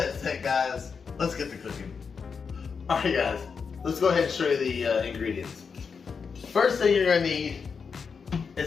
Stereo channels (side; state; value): right; quieter; 5.7 dB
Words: said, guys, let's get to cooking. Alright guys, let's go ahead and show you the ingredients. First thing you're gonna need